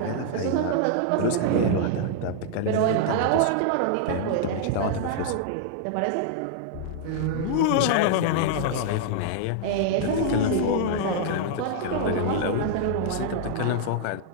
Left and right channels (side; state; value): both; different; correlation -0.01